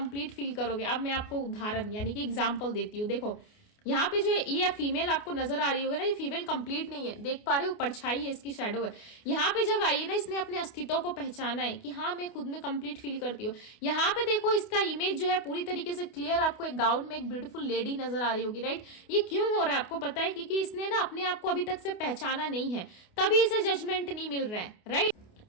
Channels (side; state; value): right; late; 28 ms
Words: फील करोगे। अब मैं आपको उदाहरण यानी कि एग्जाम्पल देती हूँ। देखो यहाँ पे जो ये फीमेल आपको नजर आ रही होगी ना, ये फीमेल कंप्लीट नहीं है, देख पा रहे हो, परछाई है, इसकी शैडो है। यहाँ पे जब आई है ना, इसने अपने अस्तित्व को पहचाना है कि हाँ मैं खुद में कंप्लीट फील करती हूँ। यहाँ पे देखो इसका इमेज जो है पूरी तरीके से क्लियर, आपको एक गाउन में एक ब्यूटीफुल लेडी नजर आ रही होगी, राइट। ये क्यों हो रहा है आपको पता है, क्योंकि इसने ना अपने आप को अभी तक से पहचाना नहीं है, तभी इसे जजमेंट नहीं मिल रहा है, राइट।